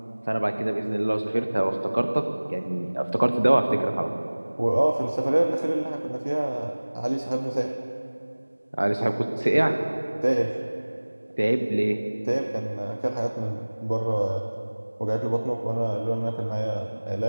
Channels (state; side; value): inverted; both; correlation -1.00